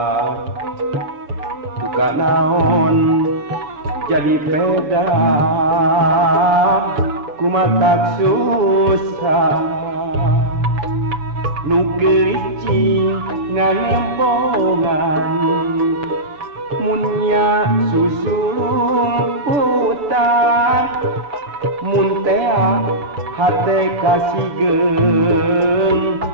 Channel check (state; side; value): late; left; 6.9 ms